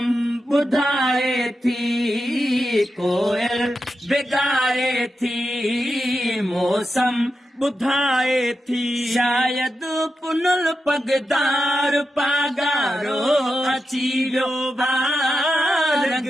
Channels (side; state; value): both; normal; correlation 0.88